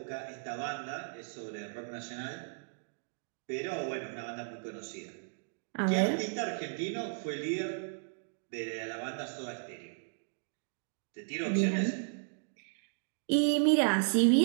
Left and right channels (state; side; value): silent; left; digital silence